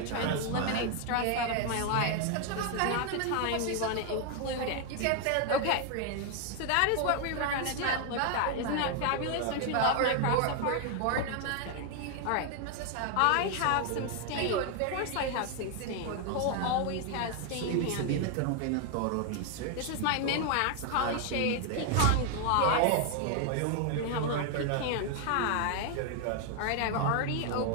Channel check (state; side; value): different; both; correlation 0.00